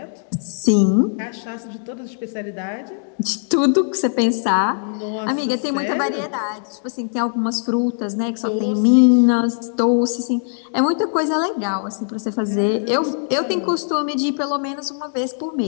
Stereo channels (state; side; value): silent; right; digital silence